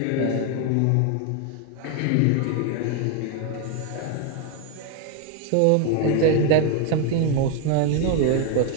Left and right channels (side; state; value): both; different; correlation 0.01